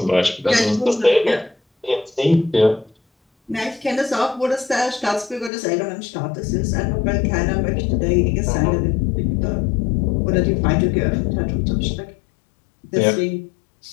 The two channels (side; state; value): right; drops out; at 5.5 s